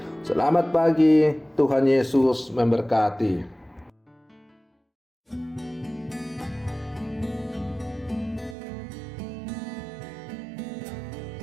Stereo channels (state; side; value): drops out; left; at 8.6 s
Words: Selamat pagi, Tuhan Yesus memberkati.